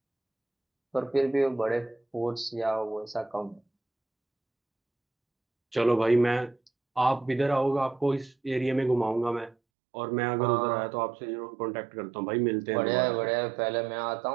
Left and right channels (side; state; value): left; drops out; at 9.6 s